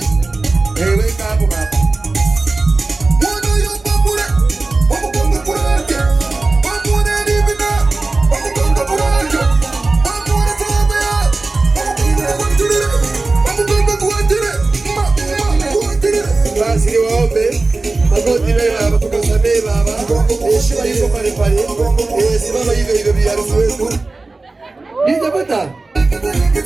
Weka hapo baba. Basi niwaombe magoti baba, tukasamee baba. Heshima yuko pale pale. Simama hivyo hivyo bi harusi wetu. Nijapata.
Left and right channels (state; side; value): quieter; left; 3.4 dB